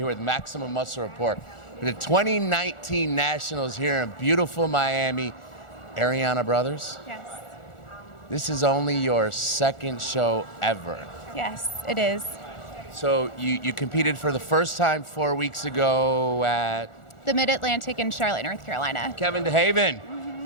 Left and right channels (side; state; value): right; late; 1.4 ms